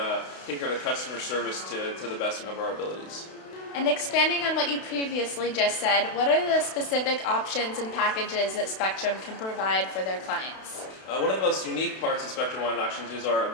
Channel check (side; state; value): right; late; 32 ms